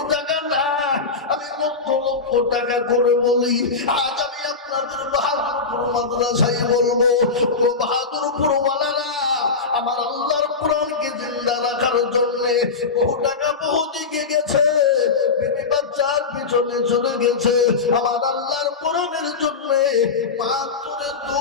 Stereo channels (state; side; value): quieter; right; 4.5 dB